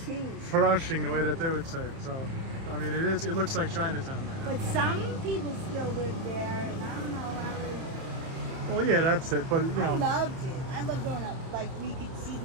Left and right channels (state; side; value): late; left; 30 ms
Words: Flushing, the way that they would say it. So, I mean, it looks like Chinatown right now. But some people still live there, and I don't know how Well, yeah, that's it. But, I loved it. I loved growing up. Like, we could see